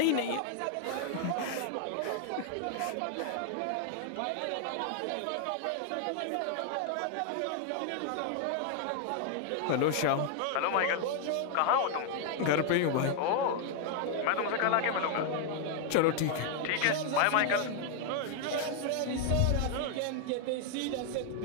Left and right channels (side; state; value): both; different; correlation 0.00